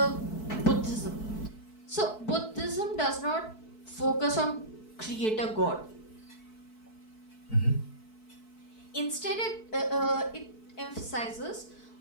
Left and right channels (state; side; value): late; right; 4.6 ms